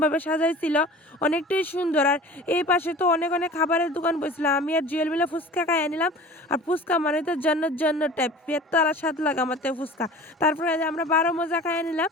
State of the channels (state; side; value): normal; both; correlation 0.41